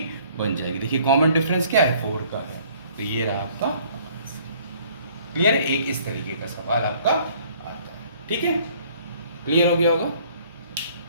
बन जाएगी। देखिए कॉमन डिफरेंस क्या है 4 का है, तो ये रहा आपका। क्लियर है, एक इस तरीके का सवाल आपका आता है। ठीक है, क्लियर हो गया होगा।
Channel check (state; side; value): inverted; both; correlation -0.58